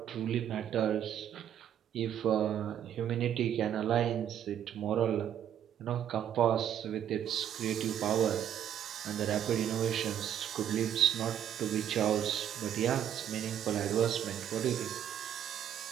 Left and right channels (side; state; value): left; quieter; 10.0 dB